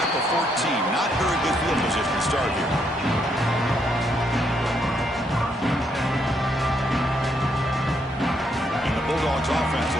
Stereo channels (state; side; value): normal; both; correlation 0.75